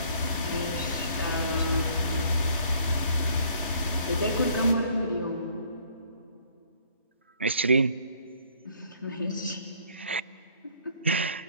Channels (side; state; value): both; inverted; correlation -0.60